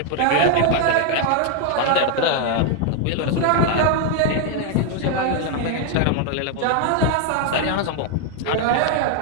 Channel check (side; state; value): both; different; correlation 0.01